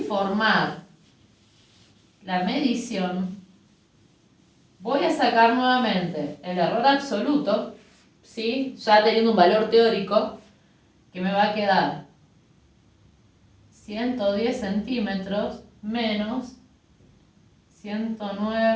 la medición, voy a sacar nuevamente el error absoluto, ¿sí? Ya teniendo un valor teórico, que me va a quedar 110 centímetros menos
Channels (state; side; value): identical; both; correlation 1.00